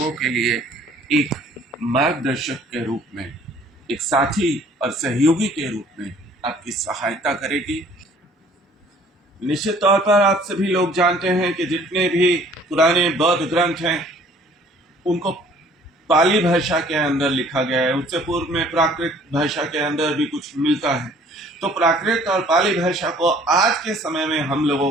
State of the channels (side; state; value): both; normal; correlation 0.55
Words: के लिए एक मार्गदर्शक के रूप में, एक साथी और सहयोगी के रूप में आपकी सहायता करेगी। निश्चित तौर पर आप सभी लोग जानते हैं कि जितने भी पुराने बौद्ध ग्रंथ हैं उनको पाली भाषा के अंदर लिखा गया है। उससे पूर्व में प्राकृत भाषा के अंदर भी कुछ मिलता है। तो प्राकृत और पाली भाषा को आज के समय में हम लोगों